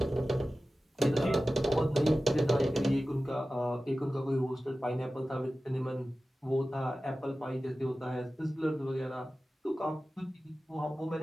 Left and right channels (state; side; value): normal; both; correlation 0.95